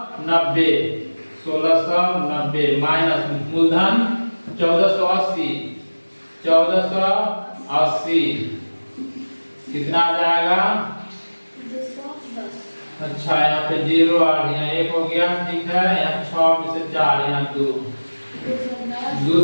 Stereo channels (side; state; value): both; inverted; correlation -1.00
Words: 1690 माइनस मूलधन 1480 कितना आ जाएगा, अच्छा यहाँ पे 0 आ गया, 1 हो गया, ठीक है, यहाँ 6 में से 4, यहाँ